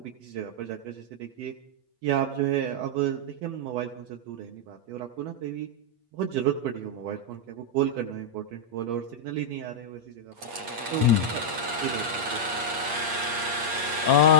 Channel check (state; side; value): late; left; 8.6 ms